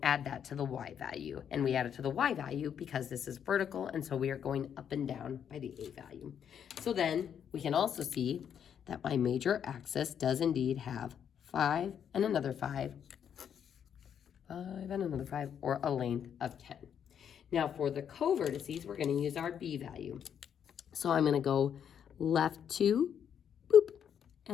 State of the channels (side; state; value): right; quieter; 8.4 dB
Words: add that to the y value. And we add it to the y value because this is vertical, and so we are going up and down by the a value. So then we can also see that my major axis does indeed have 5 and another 5, 5 and another 5, or a length of 10. Now for the co-vertices, we're going to use our b value. So I'm going to go left 2, boop,